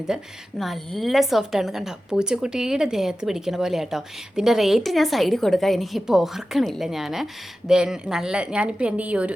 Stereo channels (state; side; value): normal; both; correlation 0.94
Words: നല്ല സോഫ്റ്റാണ്, കണ്ടോ, പൂച്ചക്കുട്ടിയുടെ ദേഹത്ത് പിടിക്കണ പോലെ ആട്ടോ. ഇതിൻ്റെ റേറ്റ് ഞാൻ സൈഡിൽ കൊടുക്കാം, എനിക്കിപ്പോൾ ഓർക്കണില്ല ഞാൻ. ഞാനിപ്പോൾ എൻ്റെ